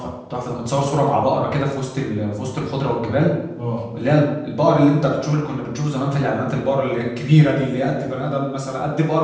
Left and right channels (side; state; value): both; identical; correlation 1.00